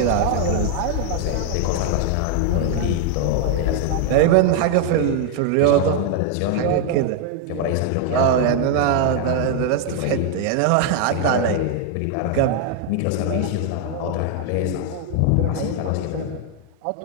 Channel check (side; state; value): both; different; correlation 0.00